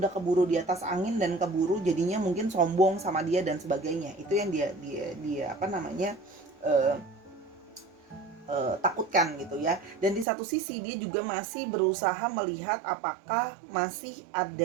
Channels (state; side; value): drops out; left; at 10.2 s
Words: keburu di atas angin dan keburu jadinya mungkin sombong sama dia dan sebagainya. Itu yang dia apa namanya takutkan gitu ya. Dan di satu sisi dia juga masih berusaha melihat apakah masih